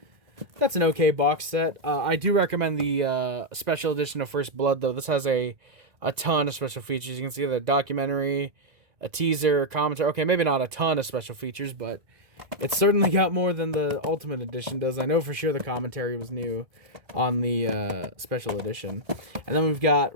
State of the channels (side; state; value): left; late; 1.6 ms